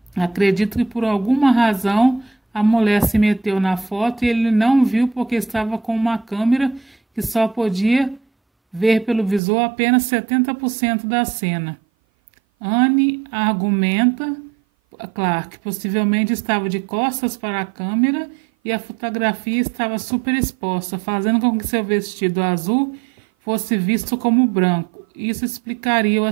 Acredito que por alguma razão a mulher se meteu na foto e ele não viu porque estava com uma câmera que só podia ver pelo visor apenas 70% da cena. Anne argumenta, Clarke possivelmente estava de costas para a câmera e a fotografia estava super exposta, fazendo com que seu vestido azul fosse visto como branco. Isso explicaria o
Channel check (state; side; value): drops out; left; at 9.4 s